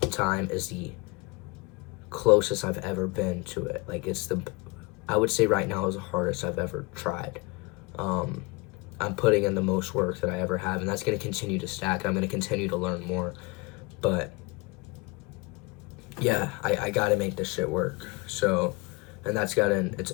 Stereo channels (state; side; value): quieter; right; 25.7 dB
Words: time is the closest I've ever been to it. Like, I would say right now is the hardest I've ever tried. I'm putting in the most work that I ever have, and that's going to continue to stack. I'm going to continue to learn more, but yeah, I got to make this shit work. So, and that's